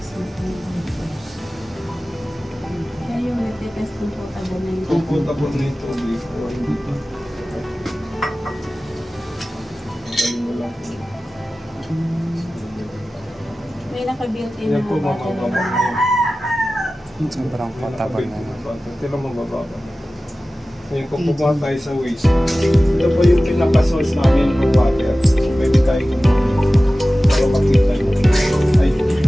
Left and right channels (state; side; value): normal; both; correlation 0.96